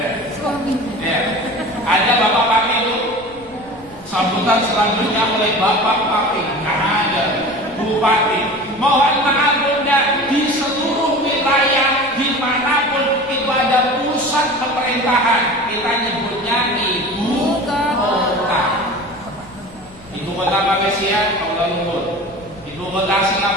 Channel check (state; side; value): noise; left; rumble, 25 dB below the sound